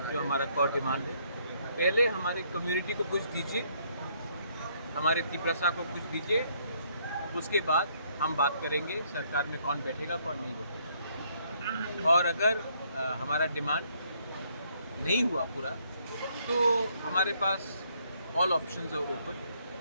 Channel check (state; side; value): inverted; both; correlation -0.69